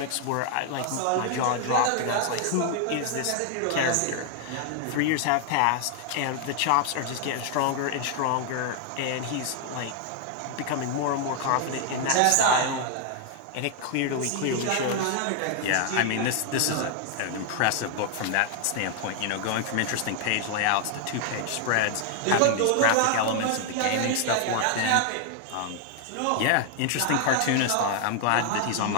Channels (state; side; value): different; both; correlation 0.00